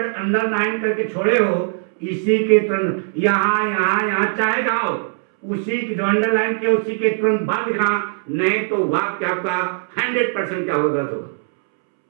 अंडरलाइन करके छोड़े हो इसी के तुरंत यहां यहां यहां, चाहे जहां हो, उसी की जो अंडरलाइन किया उसी के तुरंत बाद लिखना, नहीं तो वाक्य आपका 100% क्या होगा? गलत होगा।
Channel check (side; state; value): left; silent; 66 dB below the other